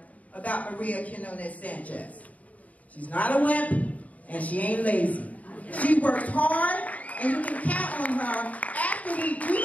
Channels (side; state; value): right; late; 0.071 ms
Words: about Maria Quinones Sanchez. She's not a wimp, and she ain't lazy. She works hard, and you can count on her after we do